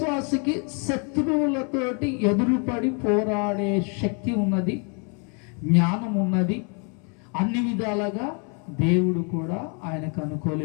శత్రువులతోటి ఎదురుపడి పోరాడే శక్తి ఉన్నది, జ్ఞానం ఉన్నది. అన్ని విధాలుగా దేవుడు కూడా ఆయనకు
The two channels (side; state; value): right; quieter; 37.2 dB